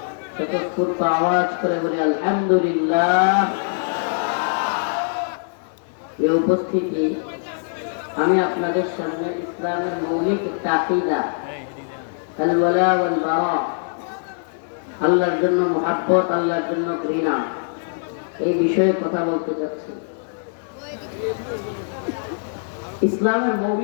স্বতঃস্ফূর্ত আওয়াজ করে বলে আলহামদুলিল্লাহ। এই উপস্থিতি আমি আপনাদের সামনে ইসলামের মৌলিক একটা আকীদা আল ওয়ালা ওয়াল বারা, আল্লাহর জন্য মুহাব্বত, আল্লাহর জন্য ঘৃণা, এই বিষয়ে কথা বলতে চাচ্ছি। ইসলামের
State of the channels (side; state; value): right; silent; digital silence